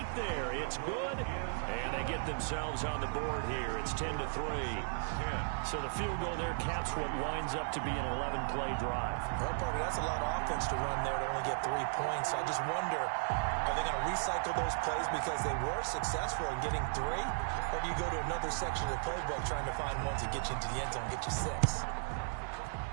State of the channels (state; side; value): silent; left; digital silence